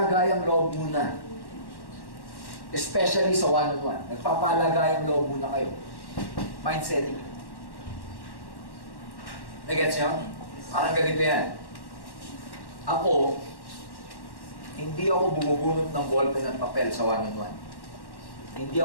loob muna. Especially sa one-on-one. Nagpapalagayang loob muna kayo. Mind setting. Nagets nyo? Parang ganito yan. Ako, hindi ako bumubunot ng ballpen at papel sa one-on-one. Hindi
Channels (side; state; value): right; late; 1.1 ms